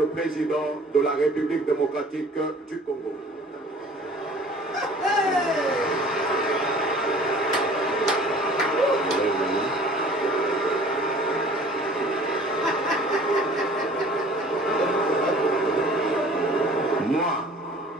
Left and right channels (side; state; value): both; normal; correlation 0.49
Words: président de la République démocratique du Congo. Moi,